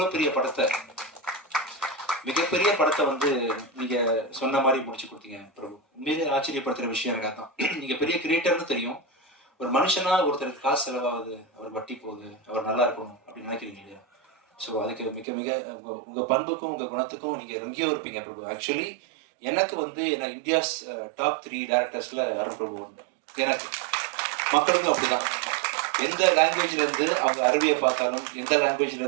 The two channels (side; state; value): left; drops out; at 15.2 s